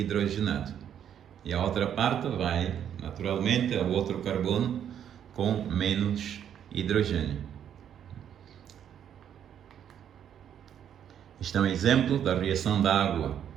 E a outra parte vai, naturalmente, ao outro carbono com menos hidrogênio. Este é um exemplo da reação da água,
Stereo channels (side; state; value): left; quieter; 9.3 dB